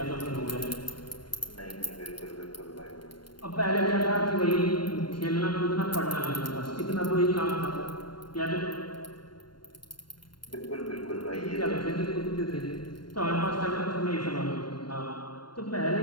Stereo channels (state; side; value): late; right; 0.72 ms